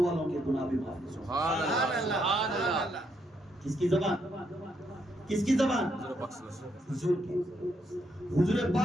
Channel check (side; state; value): both; normal; correlation 0.76